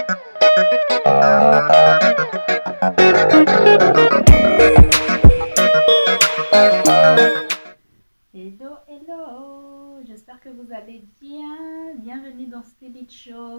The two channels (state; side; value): inverted; both; correlation -1.00